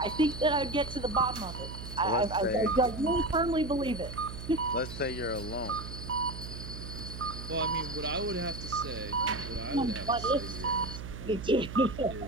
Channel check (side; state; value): right; noise; hum, 9 dB below the sound